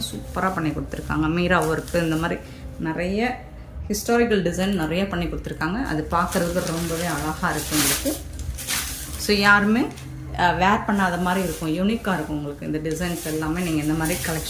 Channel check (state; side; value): identical; both; correlation 1.00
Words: சூப்பராக பண்ணி கொடுத்துருக்காங்க. மீரா ஒர்க்கு இந்த மாதிரி நிறைய ஹிஸ்டாரிக்கல் டிசைன் நிறைய பண்ணி கொடுத்துருக்காங்க. அது பார்க்குறதுக்கு ரொம்பவே அழகாக இருக்குது உங்களுக்கு. ஸோ யாருமே வேர் பண்ணாத மாதிரி இருக்கும், யூனிக்காக இருக்கும் உங்களுக்கு இந்த டிசைன்ஸ் எல்லாமே. நீங்கள் இந்த மாதிரி